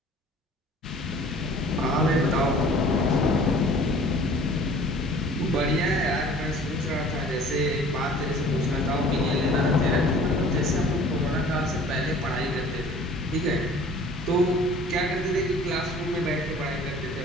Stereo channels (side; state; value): both; normal; correlation 0.49